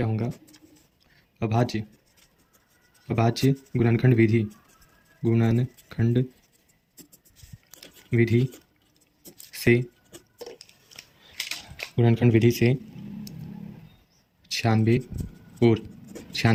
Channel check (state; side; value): identical; both; correlation 1.00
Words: होगा। अभाज्य अभाज्य गुणनखंड विधि से गुणनखंड विधि से 96 और